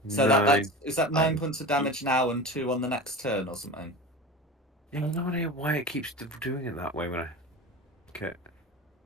So 9. is that 9 points of damage now and 2 on the next turn or something? Yeah, I have no idea why it keeps doing it that way when I. Okay.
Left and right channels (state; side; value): normal; both; correlation 0.31